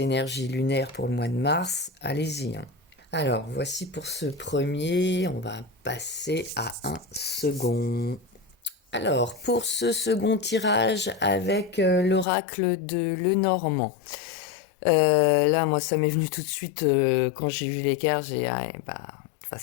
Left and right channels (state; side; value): drops out; right; at 12.2 s